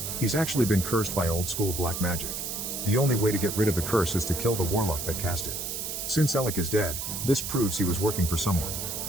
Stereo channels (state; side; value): noise; right; hiss, 4 dB below the sound